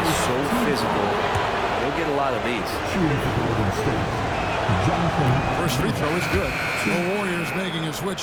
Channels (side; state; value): both; identical; correlation 1.00